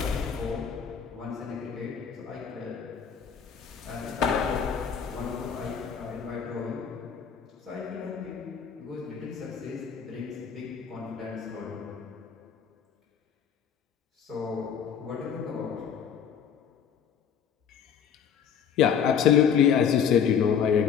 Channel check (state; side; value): quieter; right; 7.6 dB